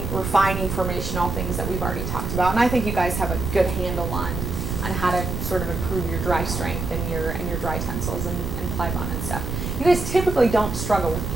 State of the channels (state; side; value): noise; right; rumble, 4 dB below the sound